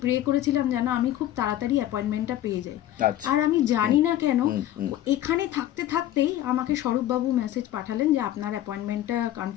প্রে করেছিলাম যেন আমি খুব তাড়াতাড়ি অ্যাপয়েন্টমেন্টটা পেয়ে যাই। আচ্ছা। আর আমি জানি না কেন হুম। এখানে থাকতে থাকতেই আমাকে স্বরূপবাবু মেসেজ পাঠালেন যে আপনার অ্যাপয়েন্টমেন্টটা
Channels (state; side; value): quieter; right; 12.9 dB